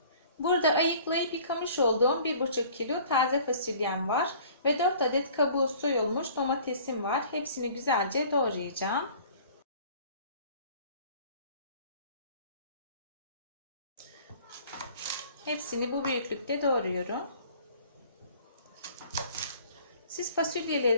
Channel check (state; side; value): inverted; both; correlation -0.50